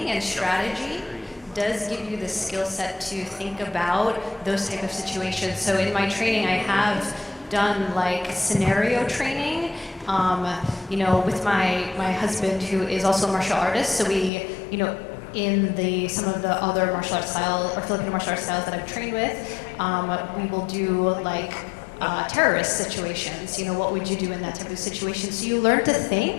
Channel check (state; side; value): drops out; right; at 14.3 s